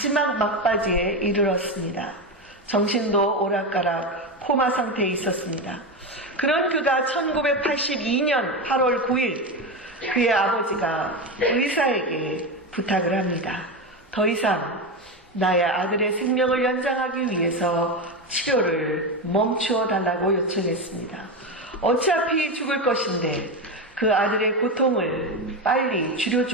막바지에 이르렀습니다. 정신도 오락가락 코마 상태에 있었습니다. 그런 그가 1982년 8월 9일 그의 아버지가 의사에게 부탁을 합니다. 더 이상 나의 아들의 생명을 연장하기 위해서 치료를 멈추어 달라고 요청했습니다. 어차피 죽을 것인데 그 아들의 고통을 빨리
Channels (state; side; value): normal; both; correlation 0.16